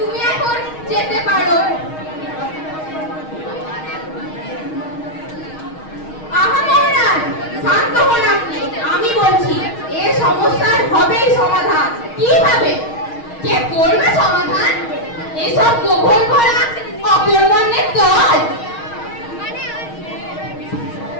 এখন যেতে পারো। আহা মহারাজ, শান্ত হন আপনি। আমি বলছি এ সমস্যার হবেই সমাধান। কিভাবে? কে করবে সমাধান? এসব গোবর ভরা অকর্মণ্যের দল।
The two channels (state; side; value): late; right; 6.4 ms